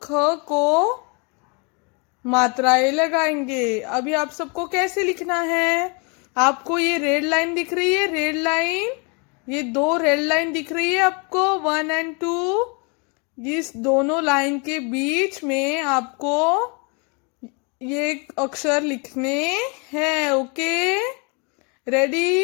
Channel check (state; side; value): quieter; right; 33.3 dB